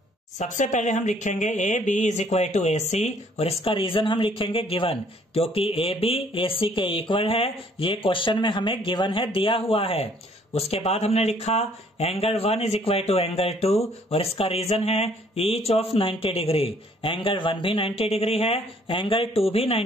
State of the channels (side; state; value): both; normal; correlation 0.61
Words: सबसे पहले हम लिखेंगे A B is equal to A C, और इसका रीजन हम लिखेंगे गिवन, क्योंकि ए बी ए सी के इक्वल है। ये क्वेश्चन में हमें गिवन है, दिया हुआ है। उसके बाद हमने लिखा angle 1 is equal to angle 2, और इसका रीजन है ईच ऑफ 90 डिग्री। एंगल 1 भी 90 डिग्री है, एंगल 2 भी